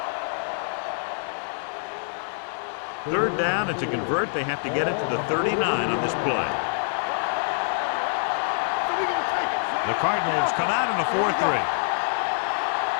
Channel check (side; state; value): right; silent; digital silence